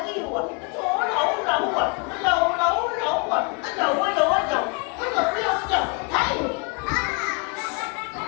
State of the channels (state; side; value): quieter; right; 32.5 dB